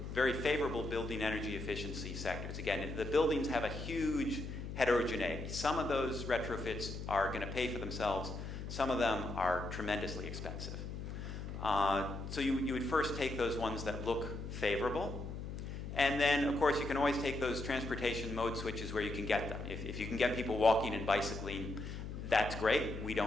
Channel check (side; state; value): left; noise; hum, 7 dB below the sound